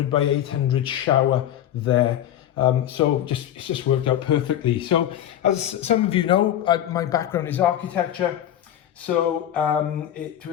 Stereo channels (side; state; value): right; quieter; 11.4 dB